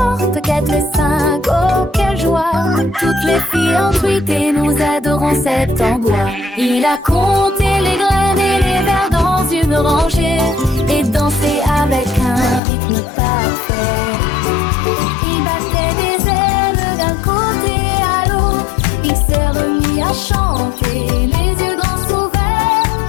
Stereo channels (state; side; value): drops out; right; at 12.6 s